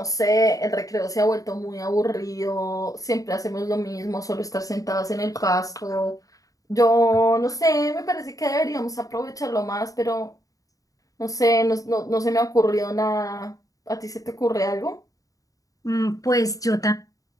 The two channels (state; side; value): late; right; 0.17 ms